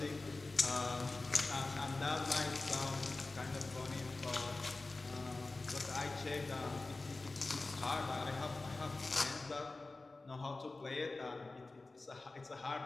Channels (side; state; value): right; quieter; 3.3 dB